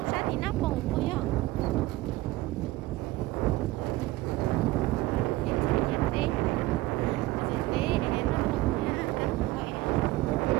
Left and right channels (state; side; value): quieter; left; 18.6 dB